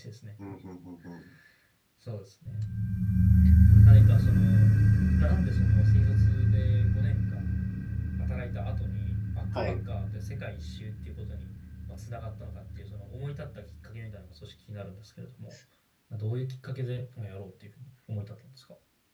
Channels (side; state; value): both; identical; correlation 1.00